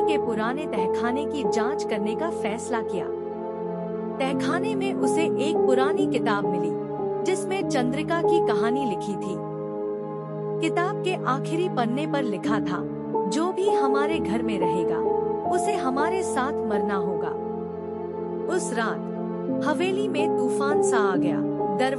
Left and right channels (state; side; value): identical; both; correlation 1.00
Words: के पुराने तहखाने की जांच करने का फैसला किया। तहखाने में उसे एक पुरानी किताब मिली, जिसमें चंद्रिका की कहानी लिखी थी। किताब के आखिरी पन्ने पर लिखा था, जो भी हमारे घर में रहेगा, उसे हमारे साथ मरना होगा। उस रात हवेली में तूफान सा आ गया।